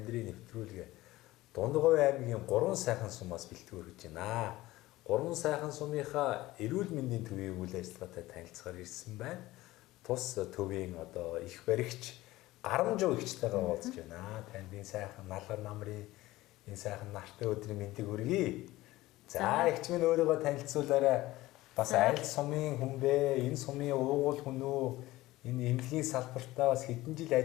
нэвтрүүлгээ Дундгой аймгийн 3 сайхан сумаас бэлтгэр гэж байна. 3 сайхан сумынхаа эрүүл мэндийн төвийн үйл ажиллагаатай танилцахаар ирсэн байна. Тус төвийн одоо их баригч Гарамжуу ихчтэйгээ уулзж байна. Танд энэ сайхан налгар намрын энэ сайхан нартай өдрийн мэндийг хүргэе. За ихч минь өөрийгөө танилцуулаарай. Бас аль сумын хүн бэ? Энэ сумын уугуул хүн үү? Энэ эмнэлгийн салбартаа бас хэдэн жил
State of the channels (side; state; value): right; quieter; 17.8 dB